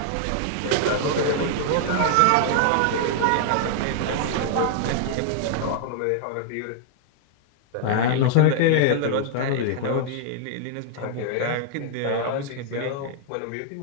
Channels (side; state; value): both; different; correlation -0.01